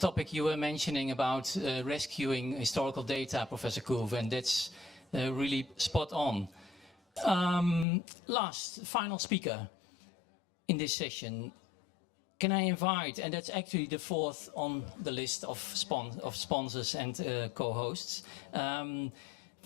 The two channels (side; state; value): right; drops out; at 7.9 s